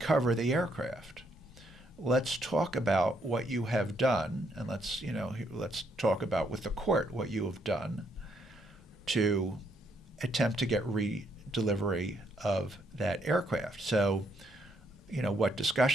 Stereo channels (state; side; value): normal; both; correlation 0.73